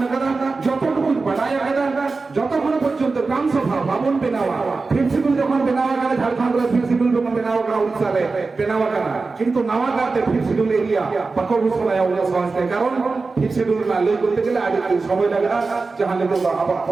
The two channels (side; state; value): left; quieter; 4.0 dB